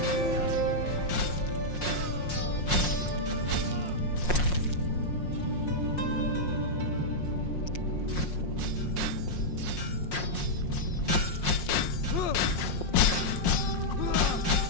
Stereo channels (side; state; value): right; late; 5.6 ms